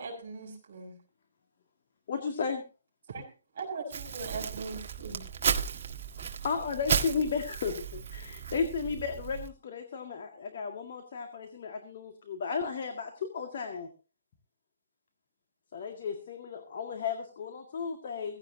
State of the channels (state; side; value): inverted; both; correlation -0.60